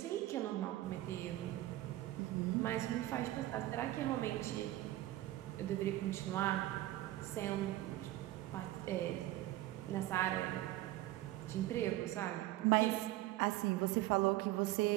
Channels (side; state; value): left; quieter; 16.1 dB